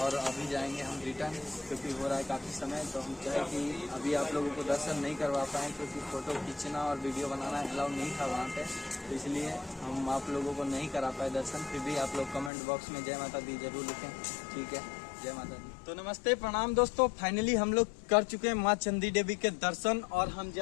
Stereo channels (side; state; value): right; drops out; at 12.5 s